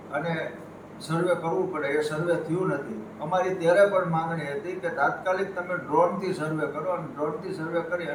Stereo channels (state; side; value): identical; both; correlation 1.00